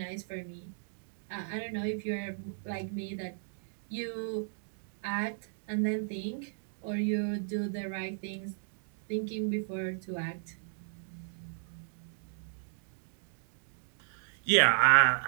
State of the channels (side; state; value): left; silent; digital silence